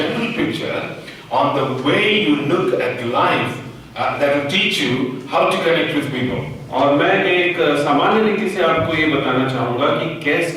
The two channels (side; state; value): both; identical; correlation 1.00